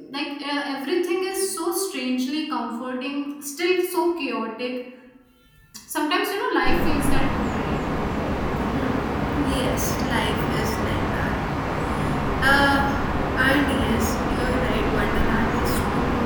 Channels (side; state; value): both; identical; correlation 1.00